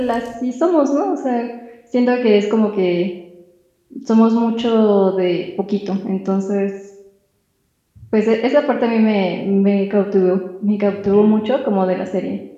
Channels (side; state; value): both; identical; correlation 1.00